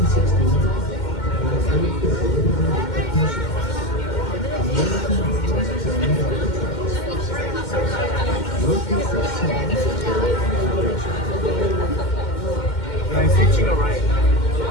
I'm switching around.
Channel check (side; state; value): right; late; 2.1 ms